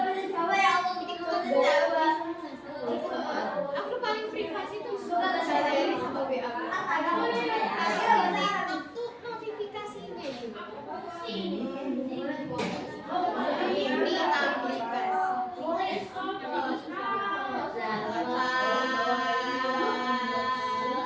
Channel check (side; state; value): both; identical; correlation 1.00